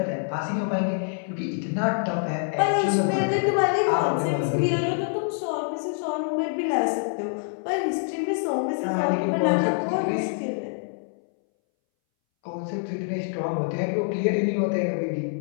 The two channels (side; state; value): right; silent; 61 dB below the other